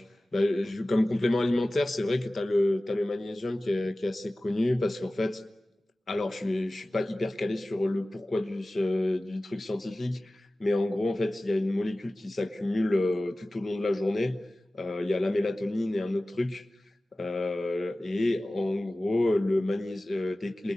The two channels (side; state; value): both; normal; correlation 0.97